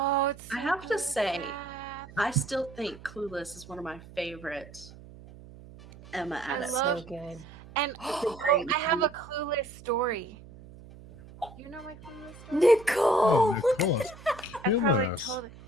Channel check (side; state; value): right; noise; hum, 19 dB below the sound